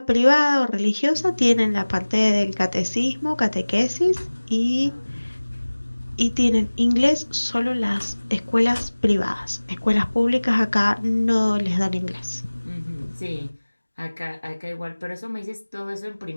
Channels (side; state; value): both; inverted; correlation -1.00